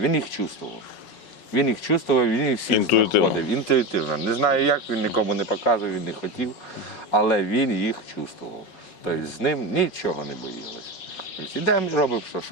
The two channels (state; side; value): late; right; 5.4 ms